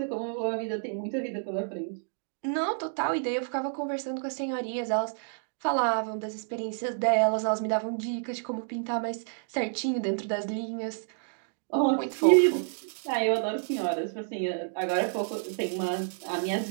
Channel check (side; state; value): left; silent; digital silence